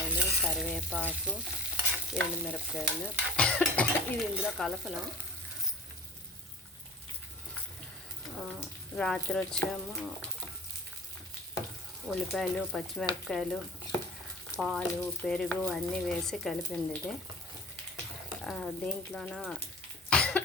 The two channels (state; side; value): normal; both; correlation 0.41